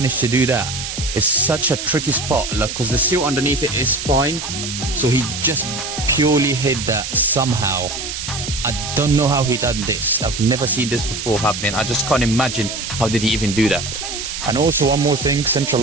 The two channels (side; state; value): right; noise; hiss, 6 dB below the sound